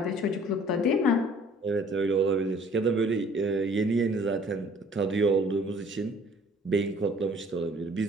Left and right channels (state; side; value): normal; both; correlation 0.55